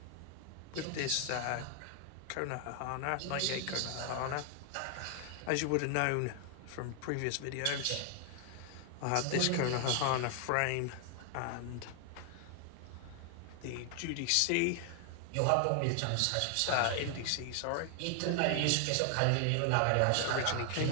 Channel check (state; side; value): different; both; correlation 0.00